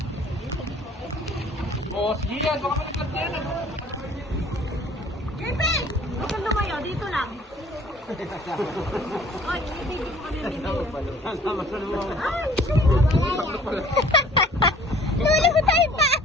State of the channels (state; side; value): normal; both; correlation 0.53